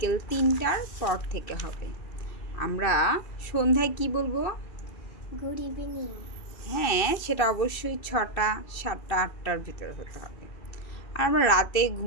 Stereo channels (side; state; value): right; late; 2.6 ms